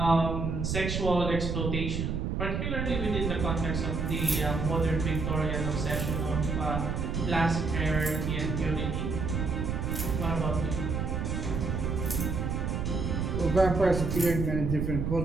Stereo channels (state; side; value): noise; right; rumble, 1 dB below the sound